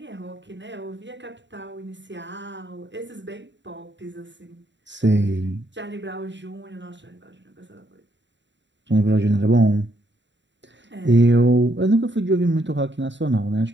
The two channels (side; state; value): left; late; 0.53 ms